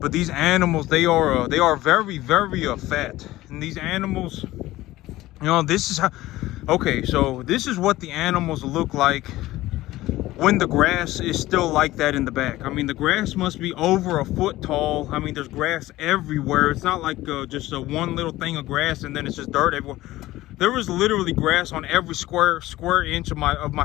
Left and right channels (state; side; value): quieter; right; 16.9 dB